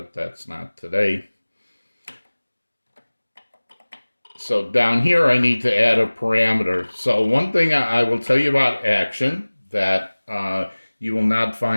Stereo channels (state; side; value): inverted; both; correlation -1.00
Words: that's not today. So down here I need to add a parameter. So one thing I will tell you about Action that you will not